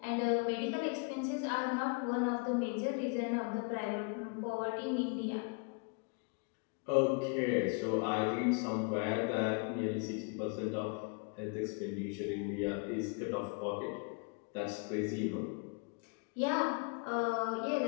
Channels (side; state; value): right; quieter; 36.6 dB